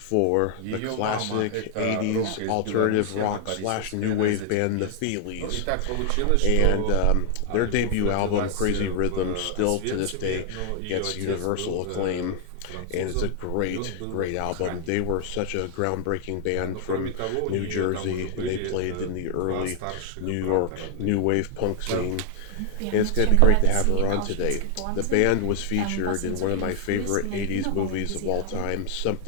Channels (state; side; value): different; both; correlation 0.00